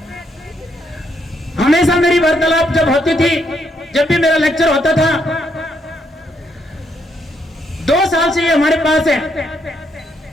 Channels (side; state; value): both; normal; correlation 0.75